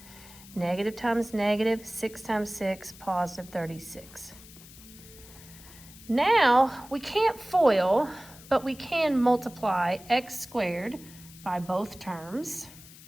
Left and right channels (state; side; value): noise; left; hiss, 20 dB below the sound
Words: Negative times negative, 6 times 6, positive 36. Now, we can't FOIL, but we can multiply x squared by both terms.